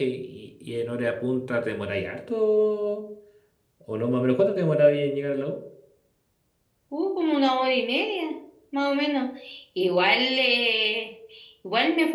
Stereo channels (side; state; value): both; identical; correlation 1.00